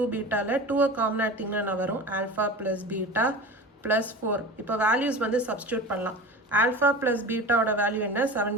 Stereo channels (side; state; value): both; normal; correlation 0.33